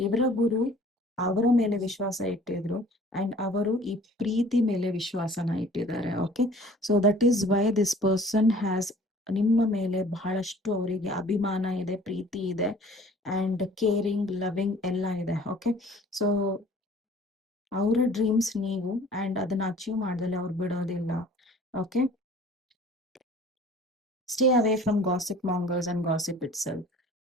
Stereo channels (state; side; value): normal; both; correlation 0.50